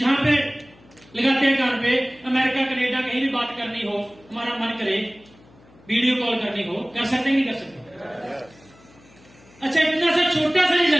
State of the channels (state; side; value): noise; left; hum, 27 dB below the sound